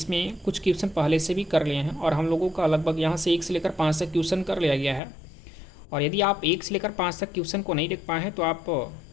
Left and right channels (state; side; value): drops out; right; at 5.0 s